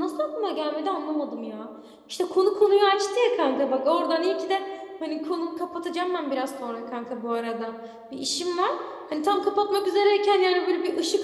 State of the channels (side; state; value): both; identical; correlation 1.00